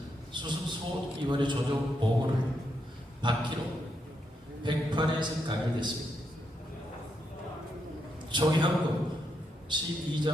수습 소위원회 조정 보고를 받기로 108회에서 가결됐습니다. 총회헌법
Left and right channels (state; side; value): normal; both; correlation 0.81